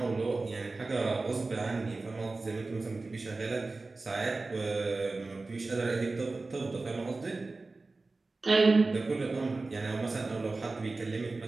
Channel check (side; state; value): left; quieter; 3.5 dB